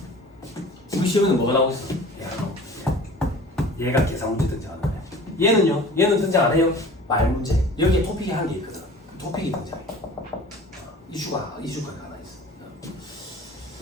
우리 시험에는 뭐가 나오고 있어? 얘가 계산 문제 등장하는 거야. 얘는요? 얘는 등장 안 해요? 말 문제. 여기에 토픽이 한 개 있거든. 토픽이 등장해. 이슈가 하나 있어.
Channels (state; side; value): normal; both; correlation 0.43